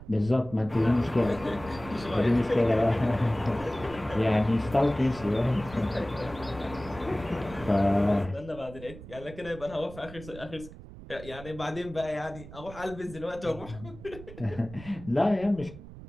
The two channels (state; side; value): noise; right; rumble, 16 dB below the sound